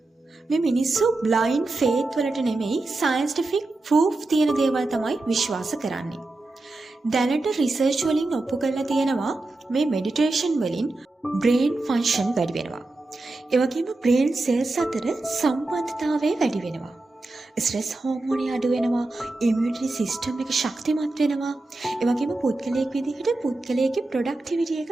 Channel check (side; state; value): left; quieter; 3.0 dB